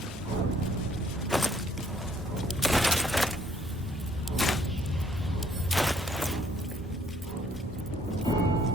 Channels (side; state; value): both; normal; correlation 0.63